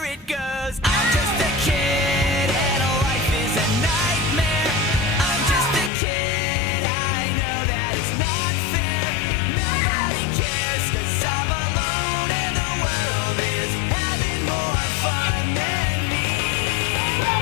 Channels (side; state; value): right; drops out; at 5.9 s